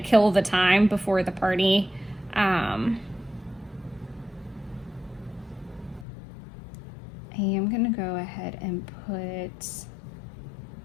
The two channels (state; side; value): drops out; right; at 6.1 s